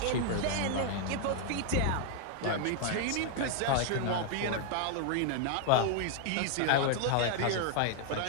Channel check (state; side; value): different; both; correlation 0.00